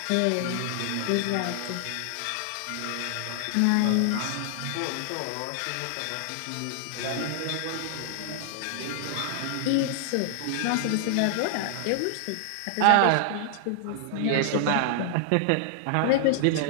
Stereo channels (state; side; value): different; both; correlation 0.00